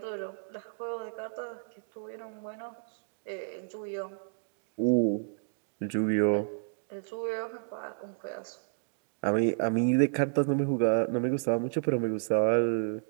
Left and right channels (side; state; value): left; silent; digital silence